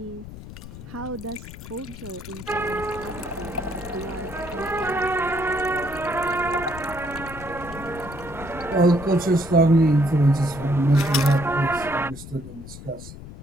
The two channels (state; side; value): noise; left; rumble, 14 dB below the sound